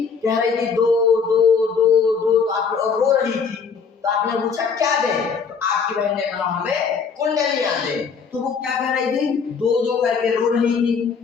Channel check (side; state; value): right; quieter; 5.7 dB